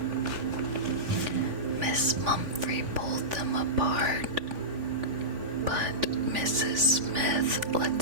Miss Mumphrey pulled them apart. But Mrs. Smith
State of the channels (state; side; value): late; left; 3.5 ms